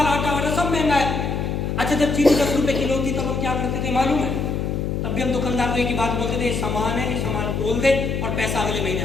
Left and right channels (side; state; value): left; noise; hum, 1 dB below the sound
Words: आटा वगैरह सब महंगा है। अच्छा, जब चीनी 10 रुपए किलो थी तब हम क्या करते थे मालूम है? तब भी हम दुकानदार को एक ही बात बोलते थे, सामान है, सामान तोल दे और पैसा अगले महीने